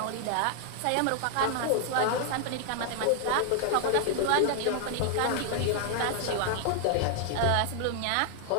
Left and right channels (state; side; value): different; both; correlation 0.00